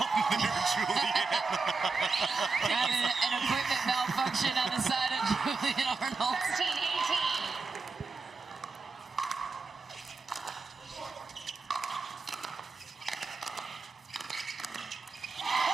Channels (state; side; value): quieter; left; 4.3 dB